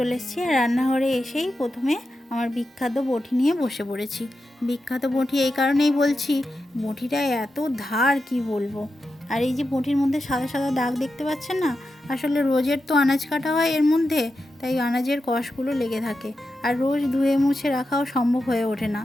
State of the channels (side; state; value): both; normal; correlation 0.89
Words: এসেছি। আর রান্নাঘরে এসেই প্রথমে আমার বিখ্যাত বঁটি নিয়ে বসে পড়েছি। বিখ্যাত বঁটি এই কারণেই বলছি, বঁটিটা এত ধার কি বলবো। আর এই যে বঁটির মধ্যে সাদা সাদা দাগ দেখতে পাচ্ছেন না, আসলে রোজের তো আনাজ কাটা হয় এর মধ্যে, তাই আনাজের কষগুলো লেগে থাকে। আর রোজ ধুয়ে মুছে রাখাও সম্ভব হয়ে ওঠে না।